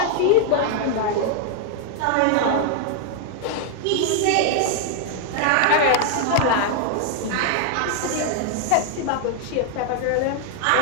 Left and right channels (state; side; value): different; both; correlation 0.00